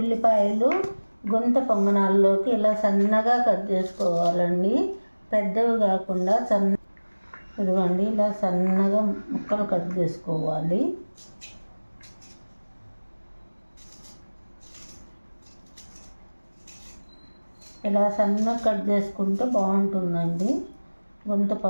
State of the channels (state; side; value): inverted; both; correlation -1.00